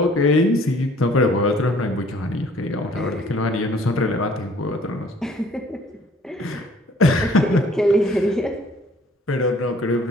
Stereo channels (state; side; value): normal; both; correlation 0.56